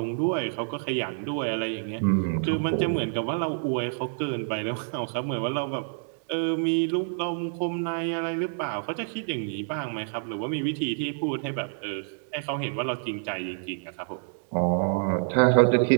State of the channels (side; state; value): left; silent; digital silence